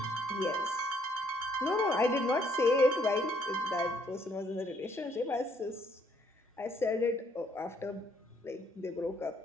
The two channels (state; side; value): normal; both; correlation 0.68